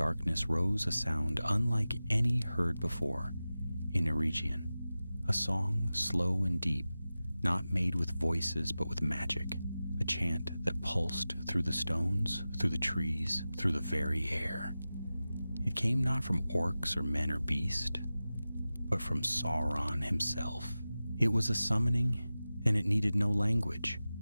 rose a sound unlike any heard before in Eregion, a song slow and deep, not made with voices but with magic, a chant that pulsed through the stones, through the trees, through the very air. It came not from orcs or men or beast, but from Sauron himself. It was a summoning, and it needed no language.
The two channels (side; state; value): both; inverted; correlation -0.95